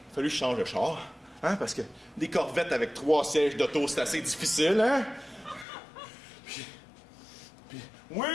a fallu que je change de char, hein, parce que des Corvettes avec 3 sièges d'auto, c'est assez difficile, hein. Puis oui,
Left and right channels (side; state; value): right; drops out; at 5.7 s